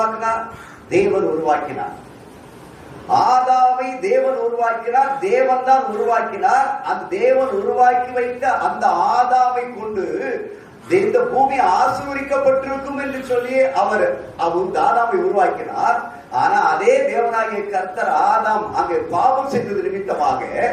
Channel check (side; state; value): both; identical; correlation 1.00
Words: தேவன் உருவாக்கினார். ஆதாமை தேவன் உருவாக்கினார், தேவன் தான் உருவாக்கினார். அந்த தேவன் உருவாக்கி வைத்த அந்த ஆதாமை கொண்டு இந்த பூமி ஆசீர்வதிக்கப்பட்டிருக்கும் என்று சொல்லி அவர் ஆதாமை உருவாக்கினார். ஆனா அதே தேவனாகிய கர்த்தர் ஆதாம் அங்கே பாவம் செய்தது நிமித்தமாக